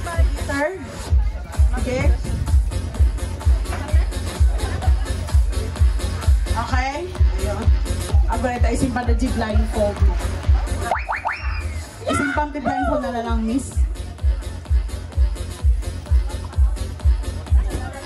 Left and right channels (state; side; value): identical; both; correlation 1.00